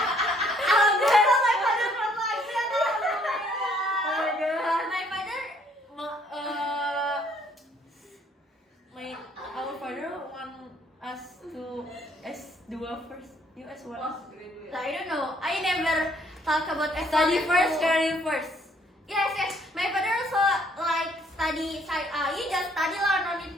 father from like that. Oh my God. My father, Our father want us to S2 first. You S1. I don't know. I never talk about Study S1, first, S2. career first. Yes. My father also like study. You just study lah, no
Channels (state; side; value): normal; both; correlation 0.65